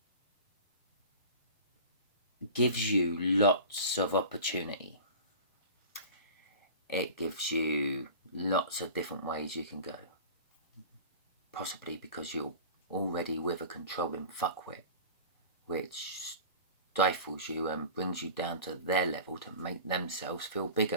gives you lots of opportunity. It gives you lots of different ways you can go. Possibly because you're already with a controlling fuckwit, which stifles you and brings you down to their level to make themselves feel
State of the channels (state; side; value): inverted; both; correlation -0.38